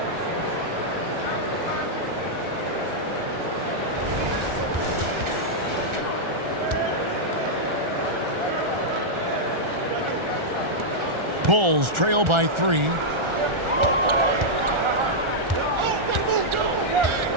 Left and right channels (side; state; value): left; late; 1.4 ms